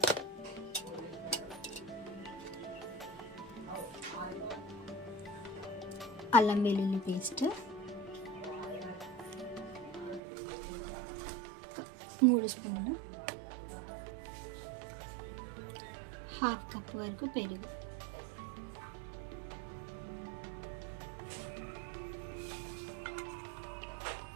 అల్లం వెల్లుల్లి పేస్ట్ 3 స్పూన్లు, 1/2 కప్ వరకు పెరుగు,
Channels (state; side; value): drops out; left; at 10.2 s